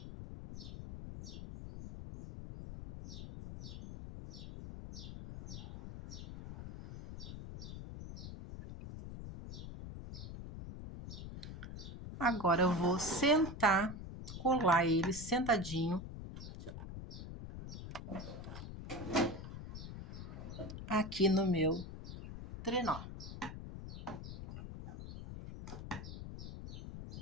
Agora eu vou sentar, colar ele sentadinho aqui no meu trenó.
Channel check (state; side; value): noise; left; rumble, 9 dB below the sound